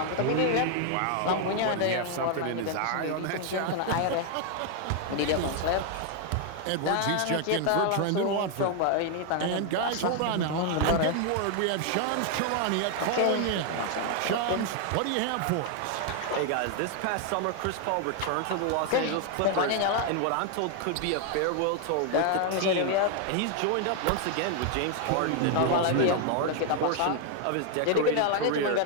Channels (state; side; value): different; both; correlation 0.00